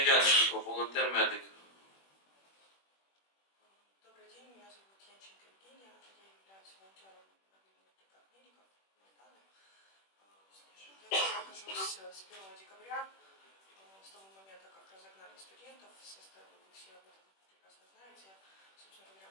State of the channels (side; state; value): right; late; 21 ms